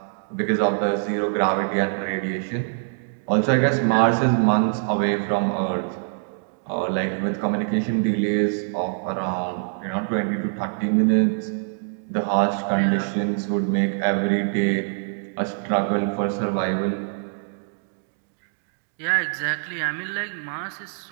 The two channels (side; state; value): left; silent; 63 dB below the other